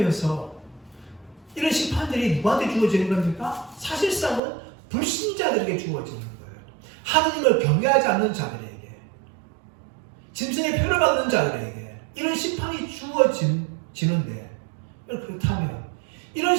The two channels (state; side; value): drops out; left; at 4.4 s